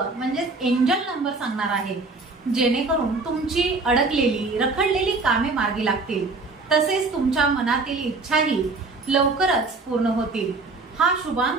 म्हणजे एंजल नंबर सांगणार आहे, जेणेकरून तुमची अडकलेली रखडलेली कामे मार्गी लागतील, तसेच तुमच्या मनातील इच्छाही लवकरच पूर्ण होतील। हा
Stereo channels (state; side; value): quieter; left; 3.7 dB